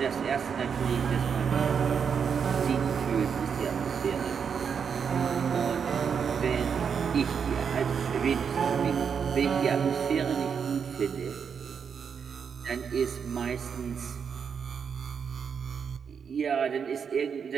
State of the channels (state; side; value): quieter; left; 6.8 dB